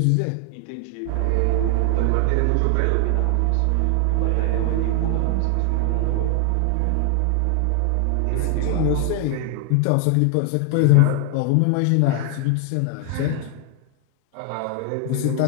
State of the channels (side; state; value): both; different; correlation 0.00